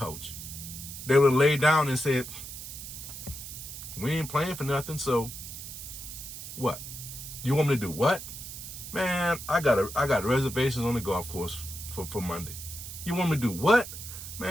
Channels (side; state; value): right; noise; hiss, 10 dB below the sound